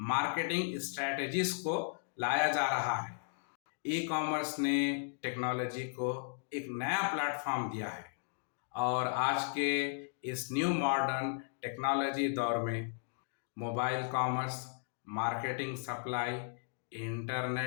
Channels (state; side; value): silent; right; digital silence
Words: मार्केटिंग स्ट्रेटजीज को लाया जा रहा है। ई कॉमर्स ने टेक्नोलॉजी को एक नया प्लेटफॉर्म दिया है और आज के इस न्यू मॉडर्न टेक्नोलॉजी दौर में mobile commerce, marketing supply,